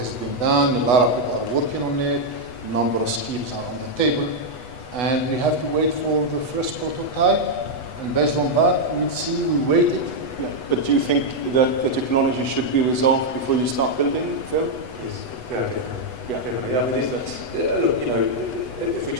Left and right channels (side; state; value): right; late; 8.1 ms